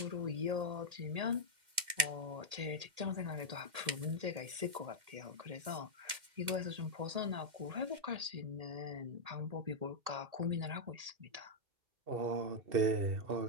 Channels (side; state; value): left; late; 2.1 ms